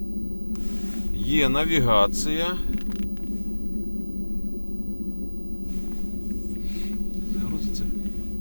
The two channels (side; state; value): both; inverted; correlation -1.00